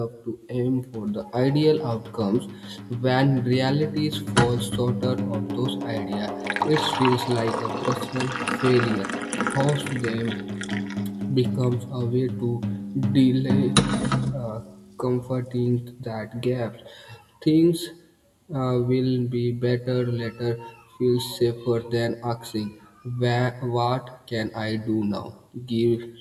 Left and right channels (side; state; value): both; identical; correlation 1.00